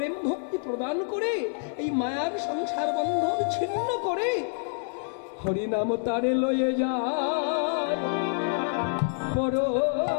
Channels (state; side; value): silent; right; digital silence